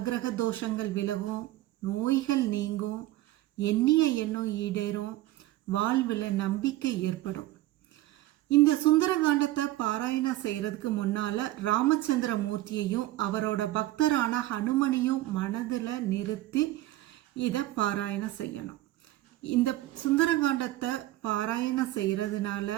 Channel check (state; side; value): quieter; left; 16.1 dB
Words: தோஷங்கள் விலகும், நோய்கள் நீங்கும், எண்ணிய எண்ணம் ஈடேறும், வாழ்வில் நம்பிக்கை ஏற்படும். இந்த சுந்தரகாண்டத்தை பாராயணம் செய்கிறதுக்கு முன்னால் ராமச்சந்திர மூர்த்தியையும் அவரோட பக்தரான ஹனுமனையும் மனதில் நிறுத்தி இதை பாராயணம் செய்யணும். இந்த சுந்தரகாண்டத்தை பாராயணம்